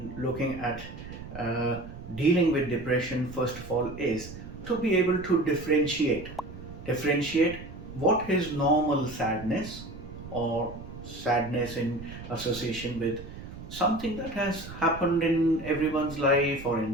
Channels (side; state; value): right; noise; rumble, 13 dB below the sound